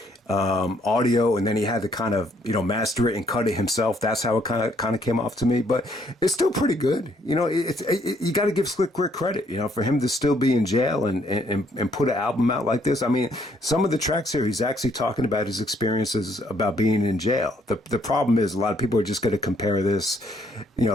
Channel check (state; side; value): normal; both; correlation 0.68